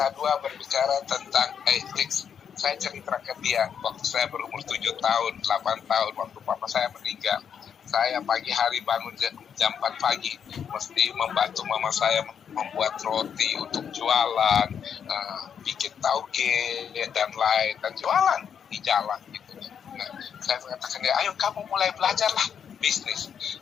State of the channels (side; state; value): right; quieter; 7.7 dB